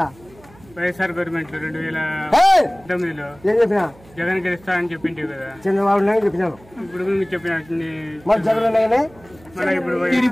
వైఎస్ఆర్ గవర్నమెంట్ 2019లో జగన్ గెలుస్తాడని చెప్పింటే కదా చంద్రబాబు నాయుడు చెప్పినాను. ఇప్పుడు చెప్పిన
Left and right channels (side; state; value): right; noise; hum, 25 dB below the sound